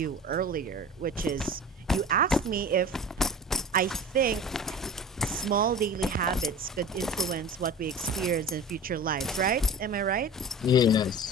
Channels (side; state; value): both; normal; correlation 0.36